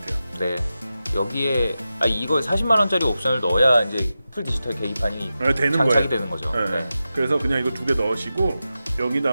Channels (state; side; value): inverted; both; correlation -0.92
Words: 네. 여기에 이거 40만 원짜리 옵션을 넣어야 이제 풀 디지털 계기판이 되는 장착이 거예요. 되는 거죠. 네. 네. 그래서 그냥 이거 두 개 넣으시고